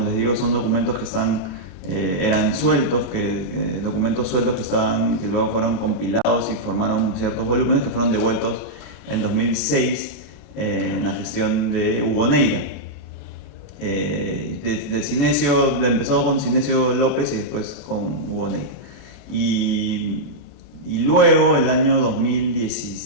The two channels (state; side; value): late; right; 28 ms